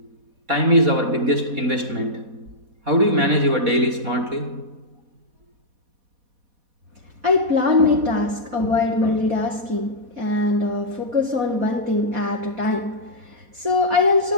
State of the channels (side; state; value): left; late; 4.1 ms